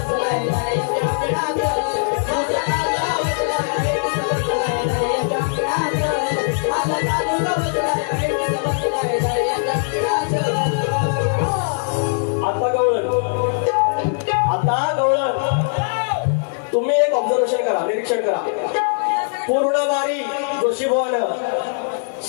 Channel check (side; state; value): right; silent; 56 dB below the other